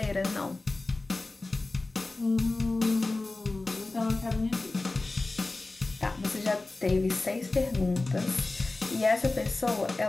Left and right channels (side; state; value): right; quieter; 3.2 dB